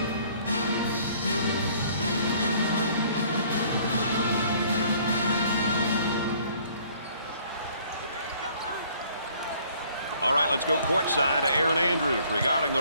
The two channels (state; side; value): inverted; both; correlation -0.59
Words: All right, let's go courtside to Aaron Andrews regarding the